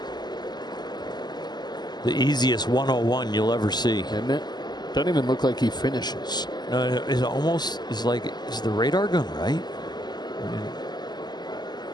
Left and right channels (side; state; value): right; late; 0.21 ms